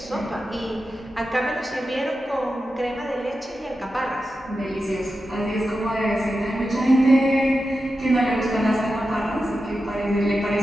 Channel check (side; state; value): both; normal; correlation 0.91